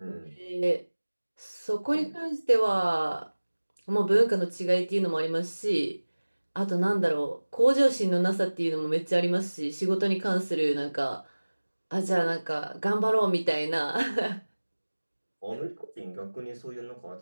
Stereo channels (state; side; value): inverted; both; correlation -1.00